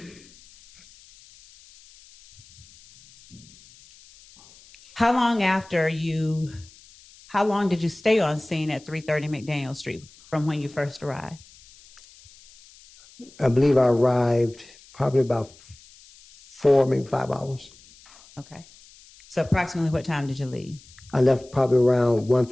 How long did you stay on scene at 330 McDaniel Street from when you first arrived? I believe I arrived probably about 4, maybe 5 hours. Okay. So approximately what time did you leave? I left probably around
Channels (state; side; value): noise; left; hiss, 25 dB below the sound